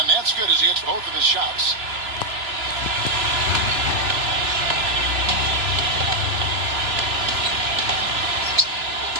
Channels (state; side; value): late; left; 3.0 ms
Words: that's good as he hits both of his shots.